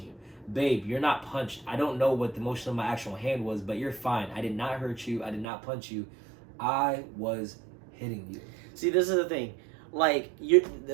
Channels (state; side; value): drops out; left; at 5.5 s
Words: you. Babe, you're not punched. I don't know what the motion of my actual hand was, but you're fine. I did not hurt you. I did not punch you. I was hitting you. See, this is the thing. Like,